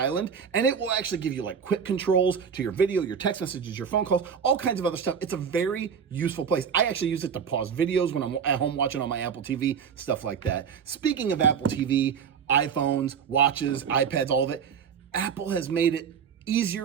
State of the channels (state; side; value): quieter; left; 7.0 dB